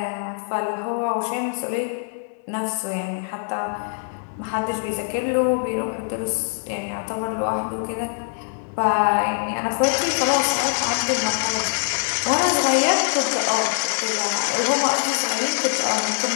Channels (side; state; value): right; silent; digital silence